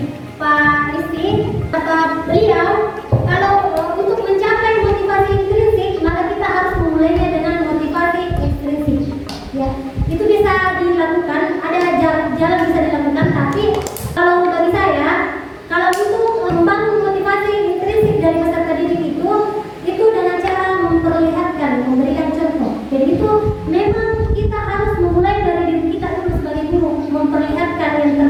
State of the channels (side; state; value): both; identical; correlation 1.00